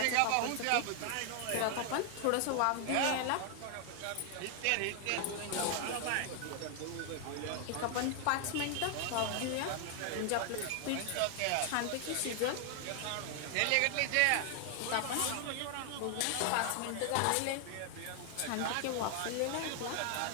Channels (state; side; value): different; both; correlation 0.00